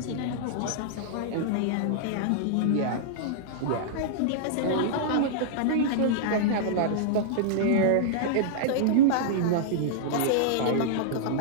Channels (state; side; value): different; both; correlation -0.02